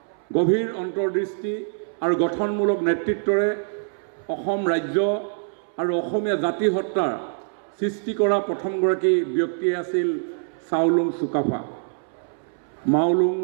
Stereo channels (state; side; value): silent; left; 62 dB below the other